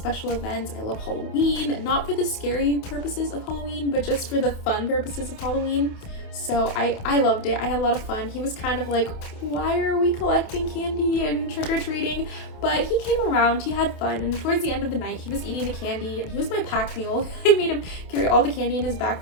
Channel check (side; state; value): right; late; 28 ms